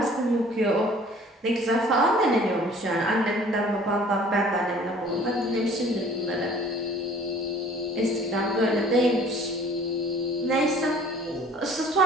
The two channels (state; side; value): normal; both; correlation 0.51